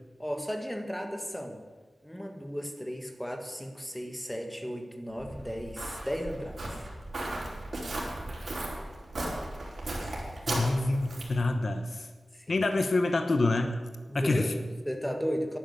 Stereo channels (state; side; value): normal; both; correlation 0.95